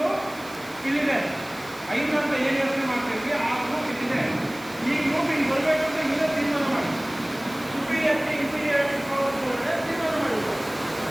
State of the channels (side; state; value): right; noise; hiss, 20 dB below the sound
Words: ಇಲ್ಲಿದೆ. 5 ಅಂತ ಏನು ಯೋಚನೆ ಮಾಡ್ತಿದ್ವಿ ಆ ಗ್ರೂಪ್ ಇಲ್ಲಿದೆ. ಈ ಗ್ರೂಪ್ ಇಲ್ಲಿ ಬರಬೇಕು ಅಂತ ಇಲ್ಲೇ ತೀರ್ಮಾನ ಮಾಡಿ ಸುಪೀರಿಯಾರಿಟಿ ಇನ್ಫೀರಿಯಾರಿಟಿ ತೀರ್ಮಾನ ಮಾಡಿದ್ರು.